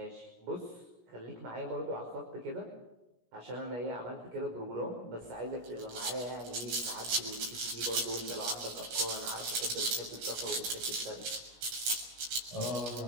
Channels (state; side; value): late; left; 17 ms